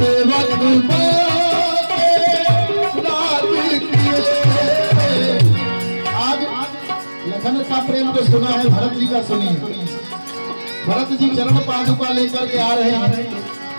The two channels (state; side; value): inverted; both; correlation -1.00